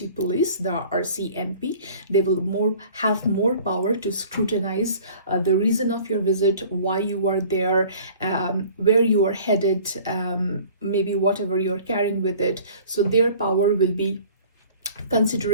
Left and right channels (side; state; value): both; inverted; correlation -0.48